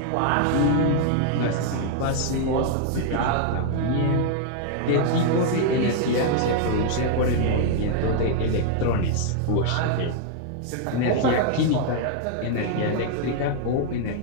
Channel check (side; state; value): both; different; correlation 0.00